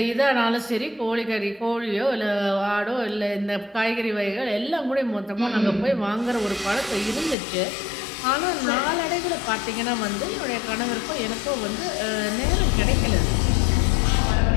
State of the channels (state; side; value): drops out; right; at 7.4 s